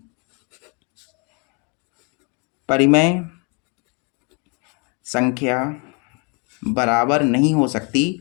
परिमेय संख्या बराबर नहीं हो सकती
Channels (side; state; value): right; quieter; 34.3 dB